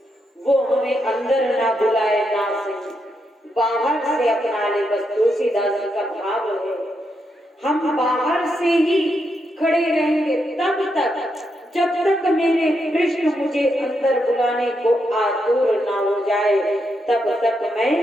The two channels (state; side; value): normal; both; correlation 0.82